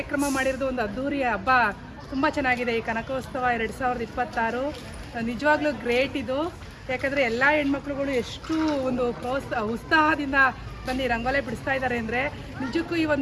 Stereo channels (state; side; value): identical; both; correlation 1.00